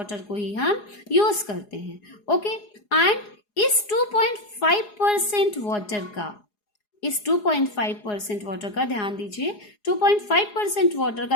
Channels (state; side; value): late; right; 4.8 ms